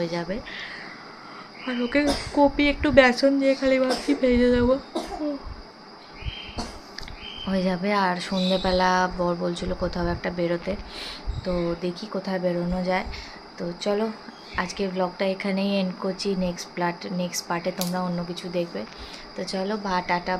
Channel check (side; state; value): both; identical; correlation 1.00